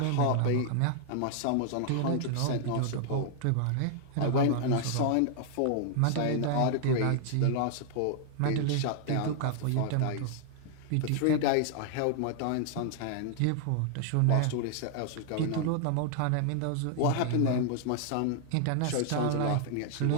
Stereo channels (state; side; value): different; both; correlation 0.00